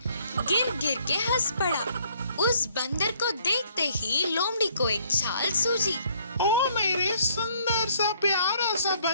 गिर गिर के हंस पड़ा। उस बंदर को देखते ही लोमड़ी को एक चाल सूझी। ओ मेरे सुंदर सा प्यारा सा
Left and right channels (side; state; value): both; inverted; correlation -0.64